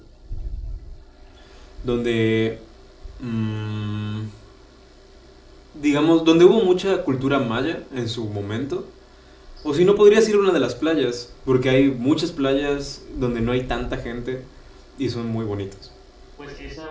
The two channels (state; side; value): identical; both; correlation 1.00